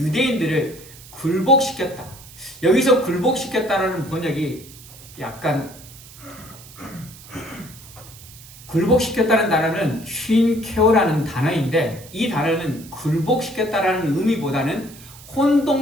굴복시켰다. 여기서 굴복시켰다라는 번역이 약간, 굴복시켰다는 단어는 쉰케어라는 단어인데 이 단어는 굴복시켰다라는 의미보다는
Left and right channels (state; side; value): noise; right; hiss, 19 dB below the sound